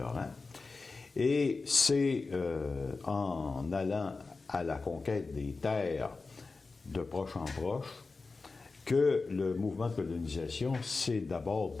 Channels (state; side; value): quieter; right; 4.0 dB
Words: Et c'est en allant à la conquête des terres de proche en proche que le mouvement de colonisation s'est d'abord